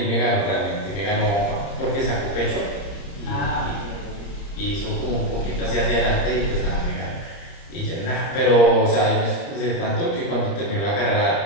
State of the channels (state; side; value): late; right; 30 ms